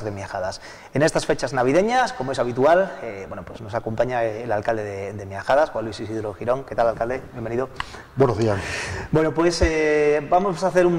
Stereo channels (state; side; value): identical; both; correlation 1.00